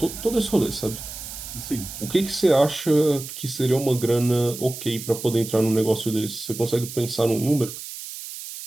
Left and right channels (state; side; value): noise; right; hiss, 10 dB below the sound